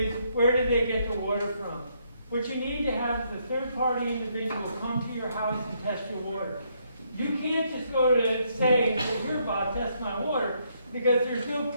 where did they get the water from? What you need to have is a third-party individual come to your house and test your water. You can't just go to say, here, Bob, test my water, because there's no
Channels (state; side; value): inverted; both; correlation -0.73